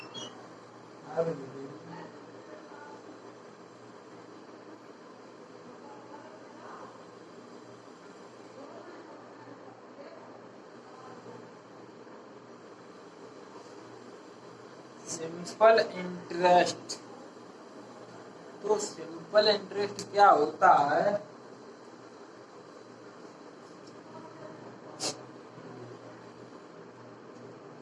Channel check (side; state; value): both; identical; correlation 1.00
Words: सिंपल इंटरेस्ट। तो सिंपल इंटरेस्ट क्या होता है?